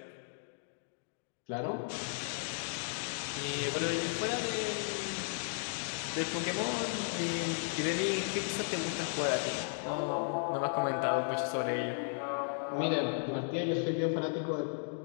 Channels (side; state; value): right; silent; digital silence